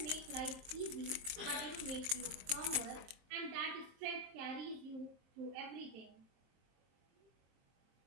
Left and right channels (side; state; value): left; late; 23 ms